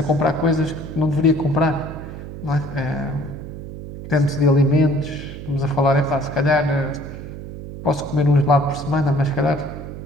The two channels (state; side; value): noise; right; hum, 11 dB below the sound